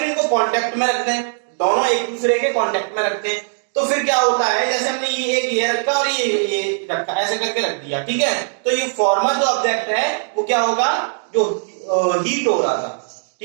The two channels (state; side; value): silent; left; digital silence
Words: इनको कांटेक्ट में रख दें, दोनों एक दूसरे के कांटेक्ट में रखते हैं। तो फिर क्या होता है, जैसे हमने ये रखा और ये रखा, ऐसे करके रख दिया, ठीक है। तो ये फॉर्मर जो ऑब्जेक्ट है वो क्या होगा? जो हीट हो रहा था,